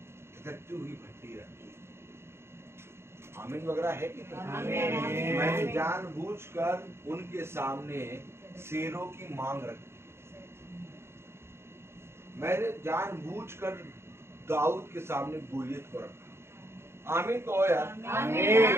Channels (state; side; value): late; left; 0.12 ms